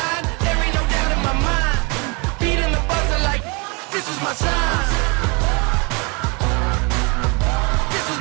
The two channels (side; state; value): left; quieter; 30.8 dB